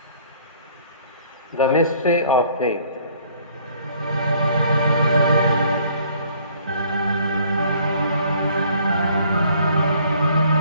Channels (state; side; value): inverted; both; correlation -0.58